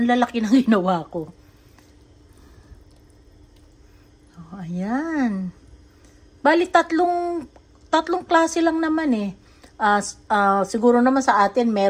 lalaki ng ginawa ko. Oh, ayan. Bali tatlong klase lang naman eh. Siguro naman sa atin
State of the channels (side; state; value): both; identical; correlation 1.00